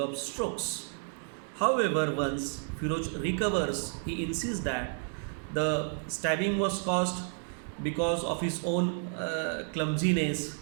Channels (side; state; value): left; silent; 57 dB below the other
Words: strokes. However, once Firoz recovers, he insists that The stabbing was caused because of his own clumsiness.